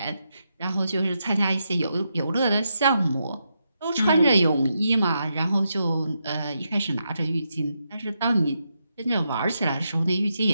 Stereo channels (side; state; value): both; inverted; correlation -0.83